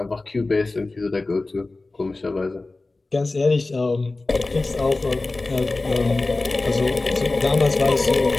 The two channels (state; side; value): quieter; right; 3.3 dB